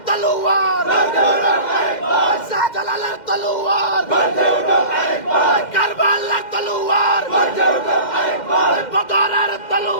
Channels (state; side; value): late; right; 2.1 ms